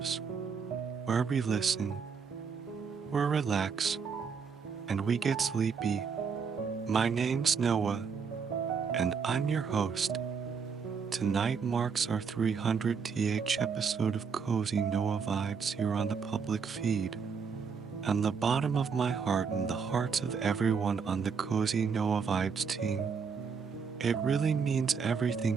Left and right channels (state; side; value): quieter; left; 5.9 dB